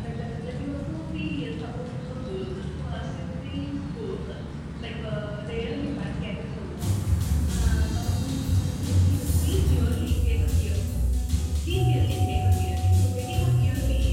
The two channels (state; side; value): identical; both; correlation 1.00